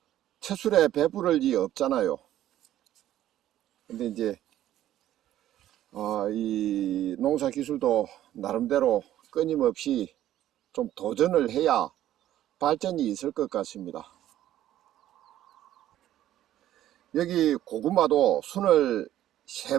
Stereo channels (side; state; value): left; quieter; 12.7 dB